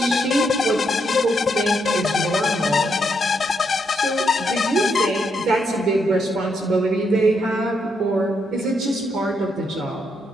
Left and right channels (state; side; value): normal; both; correlation 0.78